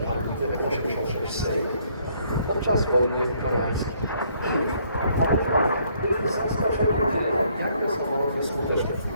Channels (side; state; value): both; inverted; correlation -0.66